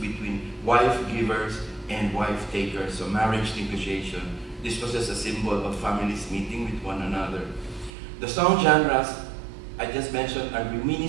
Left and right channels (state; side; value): drops out; left; at 7.9 s